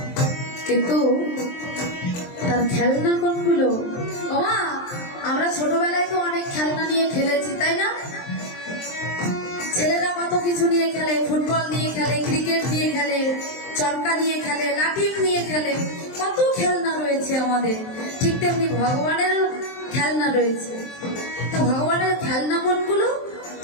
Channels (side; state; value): right; late; 23 ms